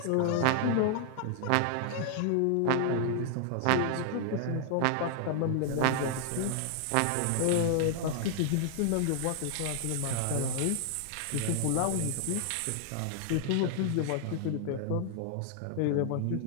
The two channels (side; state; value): both; different; correlation 0.00